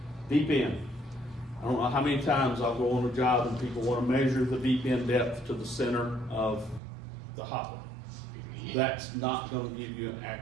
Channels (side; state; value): left; drops out; at 6.8 s